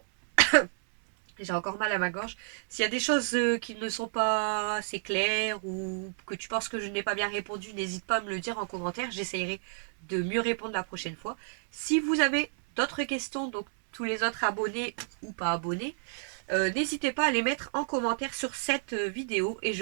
J'ai encore mal à ma gorge. S'il y a des choses qui ne sont pas assez claires ou que tu penses que je n'ai pas bien répondu, n'hésite pas à me le dire en commentaire. J'essayerai de mieux répondre la prochaine fois. Si vous avez d'autres questions, donc tous les autres abonnés ou pas abonnés, n'hésitez pas à les mettre en commentaire sur cette vidéo et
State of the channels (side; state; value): left; silent; 58 dB below the other